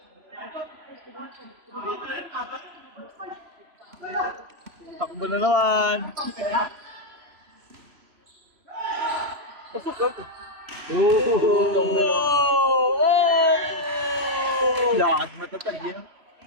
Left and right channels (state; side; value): late; left; 3.0 ms